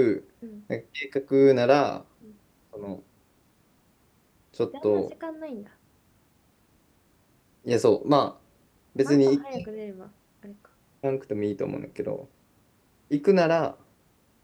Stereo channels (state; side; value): identical; both; correlation 1.00